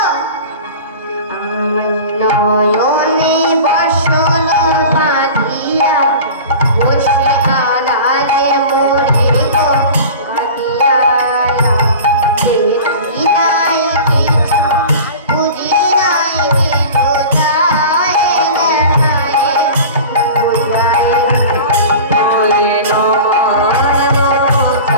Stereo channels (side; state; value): both; inverted; correlation -0.36